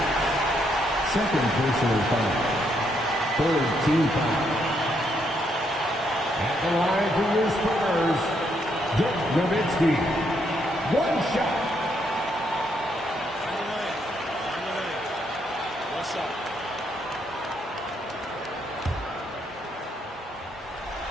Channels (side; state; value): both; normal; correlation 0.75